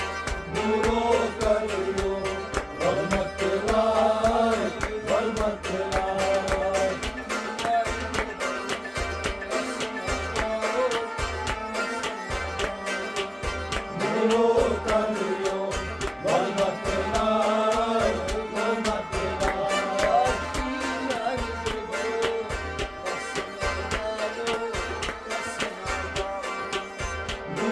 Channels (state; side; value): identical; both; correlation 1.00